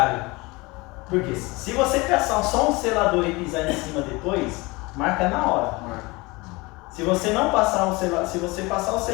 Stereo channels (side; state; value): right; quieter; 24.1 dB